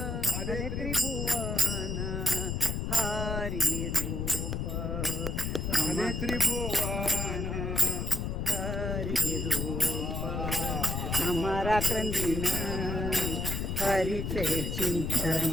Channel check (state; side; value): noise; left; rumble, 2 dB below the sound